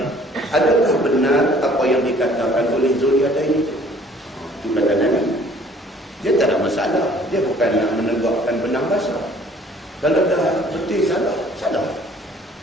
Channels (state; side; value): normal; both; correlation 0.55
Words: adakah benar apa yang dikatakan oleh Zulyadain itu? Itu kata Nabi. Dia tak ada masalah. Dia bukan nak menegakkan benang basah. Kalau dah betul salah, salah.